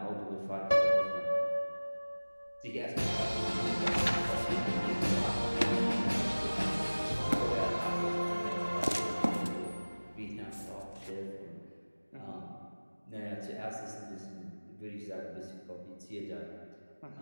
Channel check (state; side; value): inverted; both; correlation -1.00